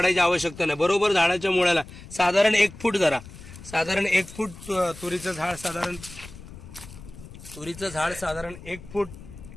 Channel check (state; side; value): noise; left; rumble, 16 dB below the sound